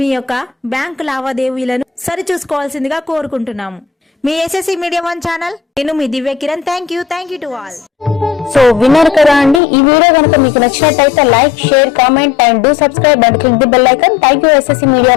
యొక్క బ్యాంకు లావాదేవీలను సరిచూసుకోవాల్సిందిగా కోరుకుంటున్నాము. మీ ఎస్ఎస్సి మీడియా 1 ఛానల్, నేను మీ Divya Kiran. Thank you to all. So విన్నారు కదా అండి. ఈ వీడియో కనుక మీకు నచ్చినట్టయితే like, share, comment and do subscribe and click the bell icon. Thank you SSC media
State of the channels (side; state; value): right; drops out; at 9.6 s